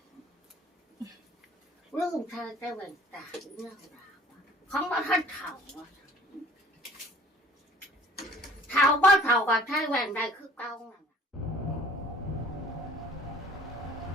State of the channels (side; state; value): both; normal; correlation 0.53